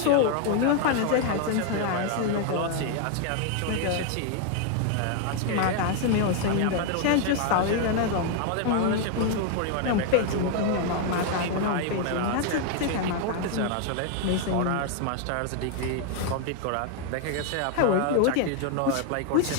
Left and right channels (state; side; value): different; both; correlation 0.00